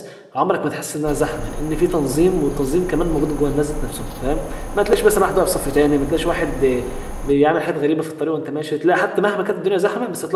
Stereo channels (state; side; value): identical; both; correlation 1.00